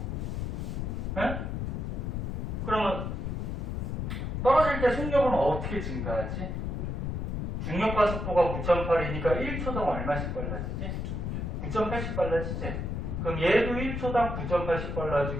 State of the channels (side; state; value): left; noise; rumble, 2 dB below the sound